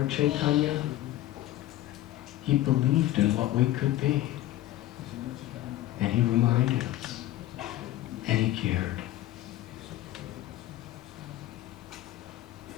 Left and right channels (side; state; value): right; quieter; 14.8 dB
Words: Chaitanya, he believed in what we could be. And he reminded us. And he cared.